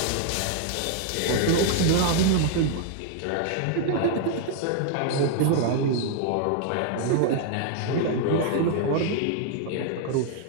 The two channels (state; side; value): different; both; correlation 0.00